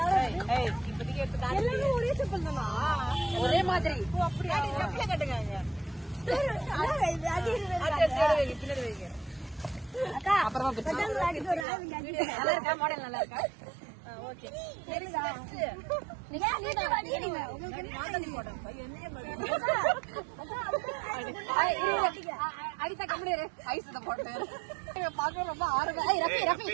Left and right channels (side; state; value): left; drops out; at 11.7 s